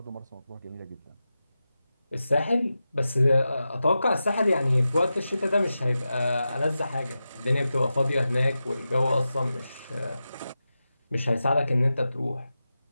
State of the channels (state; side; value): inverted; both; correlation -0.92